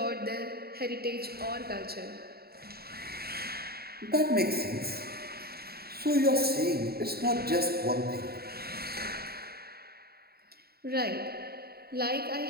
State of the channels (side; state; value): left; late; 0.45 ms